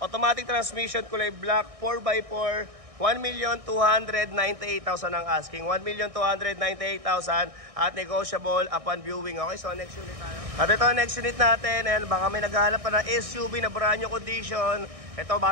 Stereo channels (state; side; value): late; left; 1.6 ms